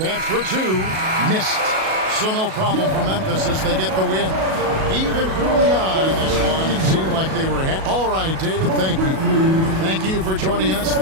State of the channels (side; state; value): left; late; 37 ms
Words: for 2. Missed. So no problem for Memphis as they get the win. Even early on in this one, it seemed like they were all right, David, thank you. Thank you for joining us.